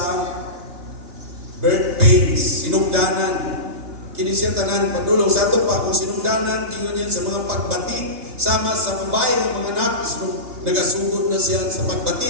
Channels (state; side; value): late; left; 3.4 ms